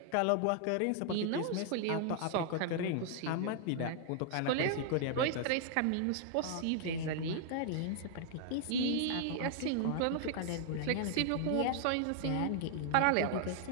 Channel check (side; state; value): both; different; correlation -0.01